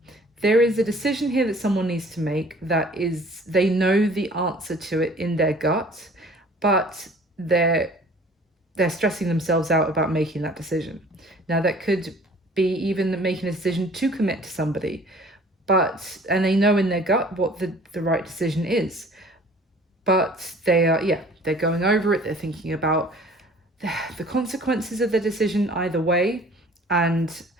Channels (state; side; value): normal; both; correlation 0.50